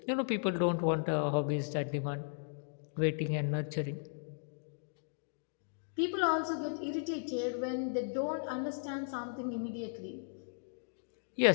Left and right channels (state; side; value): silent; right; digital silence